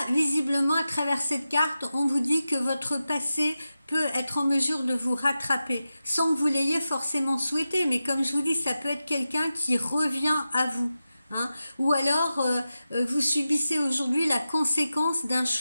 visiblement, à travers cette carte, on vous dit que votre passé peut être en mesure de vous rattraper, sans que vous l'ayez forcément souhaité. Mais comme je vous dis, ça peut être quelqu'un qui revient à vous. Hein. Ou alors, vous subissez aujourd'hui la conséquence d'un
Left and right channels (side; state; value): both; inverted; correlation -0.92